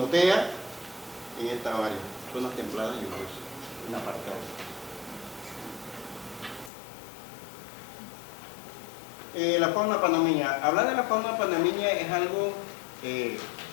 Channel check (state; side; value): drops out; right; at 6.7 s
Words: En esta área, zonas templadas y lluviosas, una parte alta. La fauna panameña. Hablar de la fauna panameña es algo que